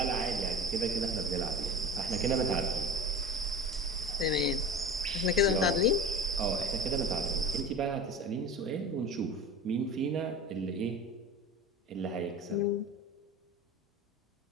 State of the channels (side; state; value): both; normal; correlation 0.34